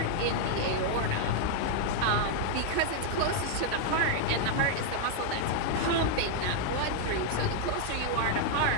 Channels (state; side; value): different; both; correlation 0.00